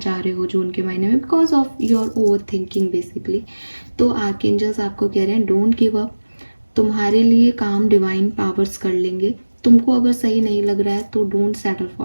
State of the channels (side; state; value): both; inverted; correlation -1.00